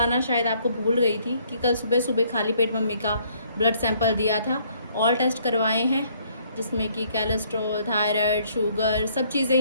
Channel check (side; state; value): both; inverted; correlation -0.65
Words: शायद आपको भूल गई थी कि कल सुबह सुबह खाली पेट मम्मी का ब्लड सैंपल दिया था। ऑल टेस्ट करवाए हैं जिसमें कि कोलेस्ट्रॉल, थायराइड, शुगर सब चीज़ें